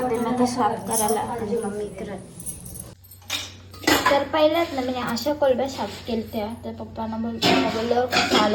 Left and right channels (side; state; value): both; identical; correlation 1.00